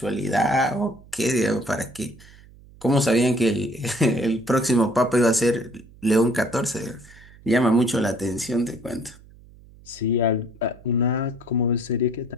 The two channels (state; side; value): noise; right; hum, 23 dB below the sound